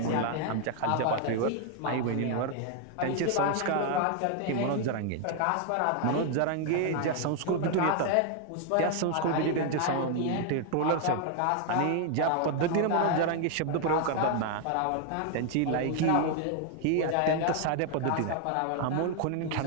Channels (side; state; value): both; different; correlation 0.00